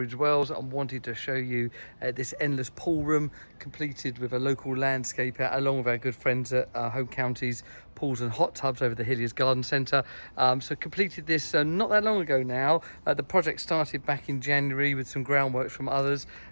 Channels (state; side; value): inverted; both; correlation -1.00